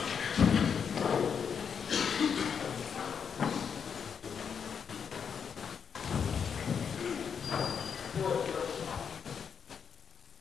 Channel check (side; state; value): right; quieter; 6.9 dB